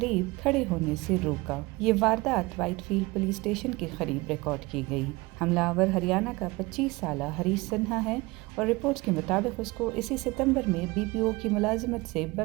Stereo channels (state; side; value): quieter; left; 23.0 dB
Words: खड़े होने से रोका। ये वारदात व्हाइटफील्ड पुलिस स्टेशन के करीब रिकॉर्ड की गई। हमलावर हरियाणा का 25 साला हरीश सिन्हा है और रिपोर्ट्स के मुताबिक उसको इसी सितंबर में बीपीओ की मुलाजिमत से